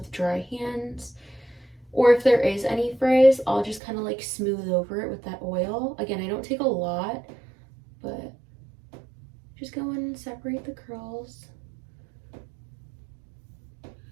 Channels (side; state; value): left; drops out; at 3.8 s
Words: dry hands. Or if there is any frizz, I'll just kind of like smooth over it with that oil. Again, I don't take a lot, but just go in and separate the curls.